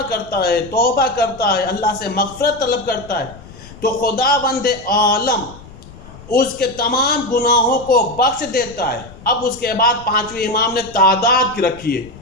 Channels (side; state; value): left; noise; rumble, 19 dB below the sound